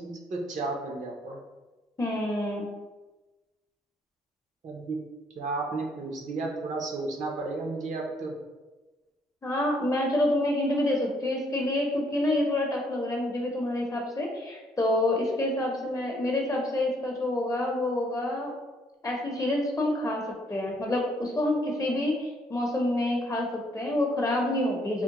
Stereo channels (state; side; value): normal; both; correlation 0.67